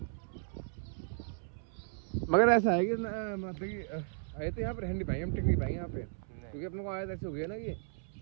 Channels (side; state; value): left; silent; 54 dB below the other